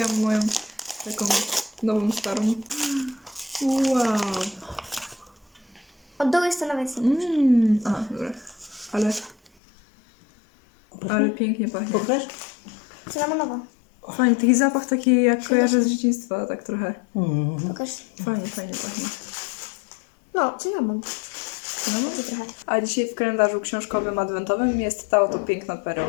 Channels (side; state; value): right; drops out; at 9.5 s